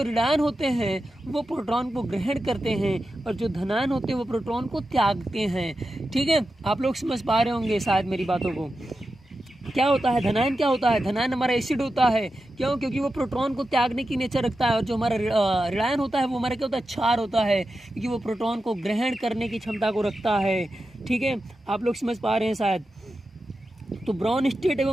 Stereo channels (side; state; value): both; normal; correlation 0.91